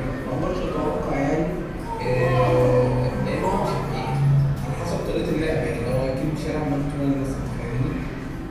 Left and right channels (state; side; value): identical; both; correlation 1.00